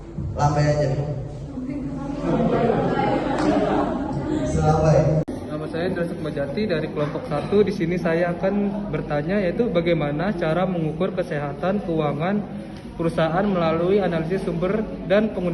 lambai aja. Selambai. Nama saya Indra Sukmajati dari kelompok 1. Di sini saya akan bertanya yaitu bagaimana cara mengukur kesehatan keuangan perusahaan melalui analisis sumber dan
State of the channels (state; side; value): identical; both; correlation 1.00